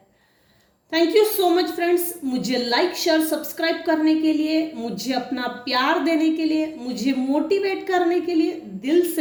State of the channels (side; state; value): both; identical; correlation 1.00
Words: Thank you so much friends, मुझे लाइक शेयर सब्सक्राइब करने के लिए, मुझे अपना प्यार देने के लिए, मुझे मोटिवेट करने के लिए दिल